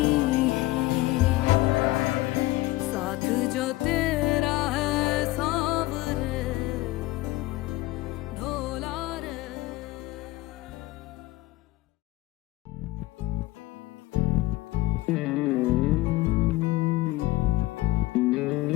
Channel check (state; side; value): quieter; right; 18.9 dB